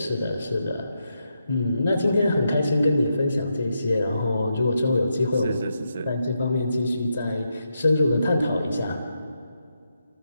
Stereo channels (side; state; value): both; inverted; correlation -0.84